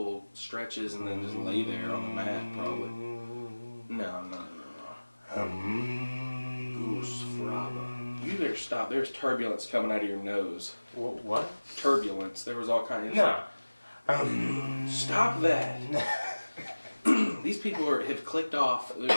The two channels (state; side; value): inverted; both; correlation -1.00